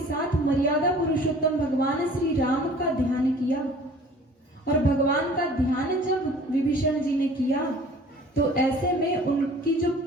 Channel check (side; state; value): both; normal; correlation 0.48